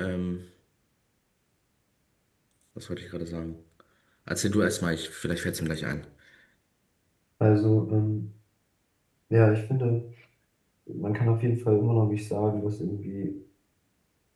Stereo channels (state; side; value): identical; both; correlation 1.00